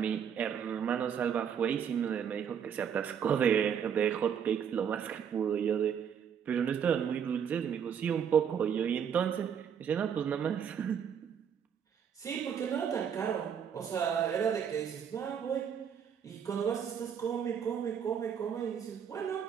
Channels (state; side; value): quieter; left; 7.9 dB